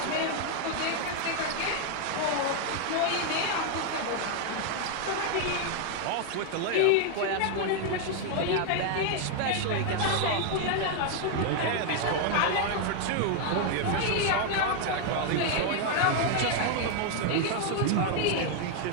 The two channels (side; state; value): both; different; correlation 0.00